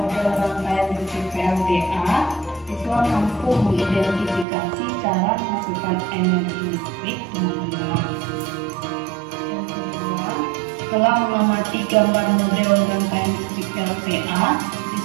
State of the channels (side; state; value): left; drops out; at 4.5 s